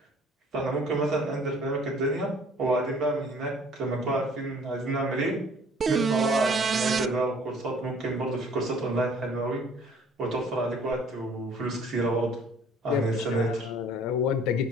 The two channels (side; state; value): both; normal; correlation 0.55